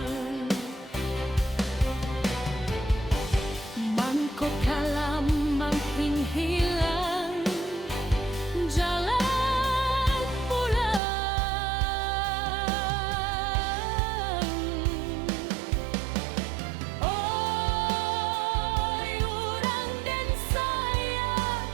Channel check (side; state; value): left; drops out; at 11.0 s